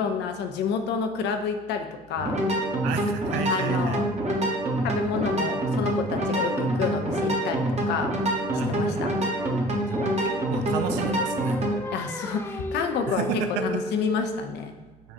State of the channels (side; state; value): right; noise; hum, 27 dB below the sound